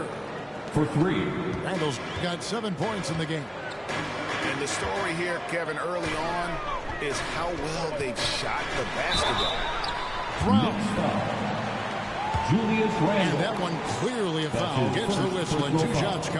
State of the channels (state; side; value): identical; both; correlation 1.00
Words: For 3. Randle's got 7 points in the game. And the story here, Kevin, early on is how well they've shot the basketball. Brown. Julius Randle. And that one clearly a foul. Gets the whistle and 2 shots